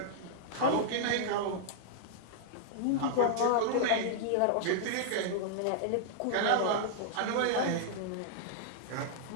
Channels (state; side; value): different; both; correlation -0.01